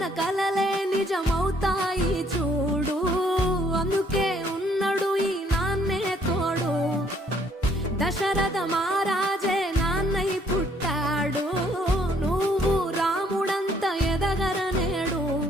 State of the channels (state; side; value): normal; both; correlation 0.65